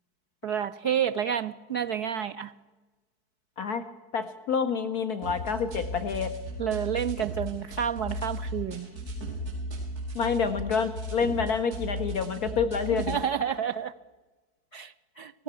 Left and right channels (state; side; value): late; right; 4.6 ms